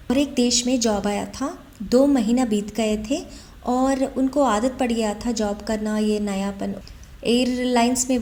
और एक देश में जॉब आया था। 2 महीना बीत गए थे और उनको आदत पड़ गया था जॉब करना, ये नयापन। एयरलाइंस में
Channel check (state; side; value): identical; both; correlation 1.00